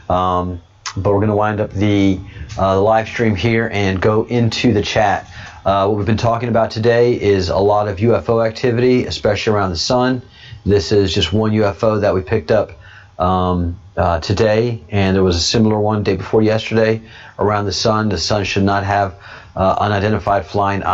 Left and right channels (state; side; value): identical; both; correlation 1.00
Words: but we're going to wind up the live stream here and go into the chat. What we've been talking about today is a lot of UFO activity, especially around the sun. This is just one UFO that we picked up today, and there was a similar one day before yesterday around the sun. The sun should not have unidentified flying